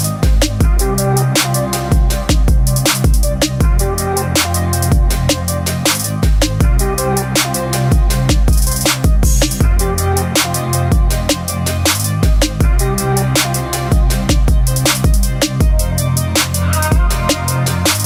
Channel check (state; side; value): identical; both; correlation 1.00